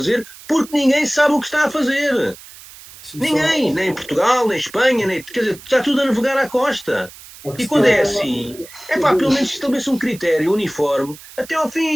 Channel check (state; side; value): noise; right; hiss, 19 dB below the sound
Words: porque ninguém sabe o que está a fazer. Ninguém, nem em Portugal, nem em Espanha, quer dizer, está tudo a navegar à costa. E quando é assim, pelo menos estabeleça um critério uniforme até ao